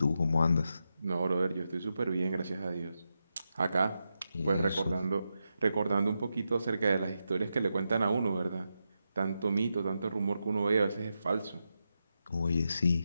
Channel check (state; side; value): inverted; both; correlation -0.87